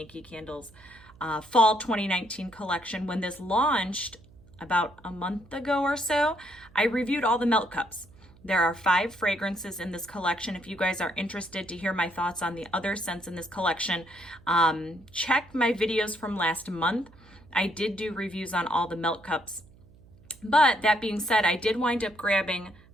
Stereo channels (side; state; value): right; noise; hum, 25 dB below the sound